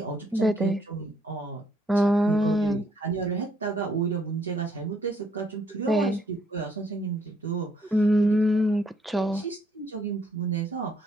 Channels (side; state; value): both; normal; correlation 0.68